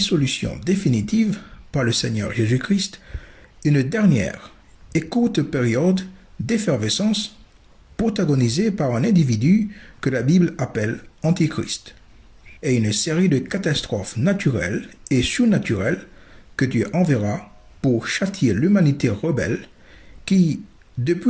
définitive par le Seigneur Jésus-Christ une dernière et courte période d'effervescence protagonisée par un individu que la Bible appelle Antichrist, et une série de catastrophes naturelles et surnaturelles que Dieu enverra pour châtier l'humanité rebelle qui,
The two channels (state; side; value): identical; both; correlation 1.00